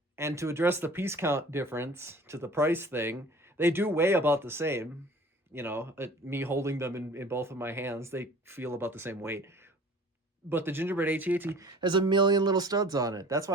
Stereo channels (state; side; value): normal; both; correlation 0.46